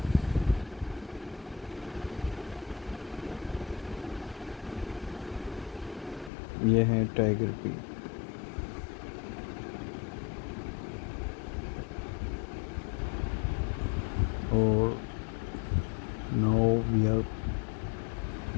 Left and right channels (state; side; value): drops out; right; at 6.3 s